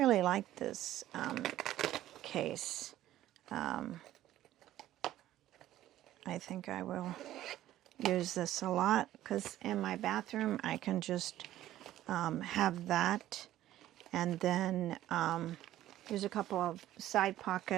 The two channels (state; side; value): quieter; left; 13.7 dB